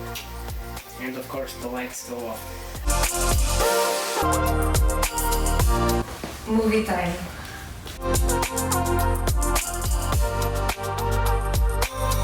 And of course the lights go off. Movie time.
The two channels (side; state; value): both; identical; correlation 1.00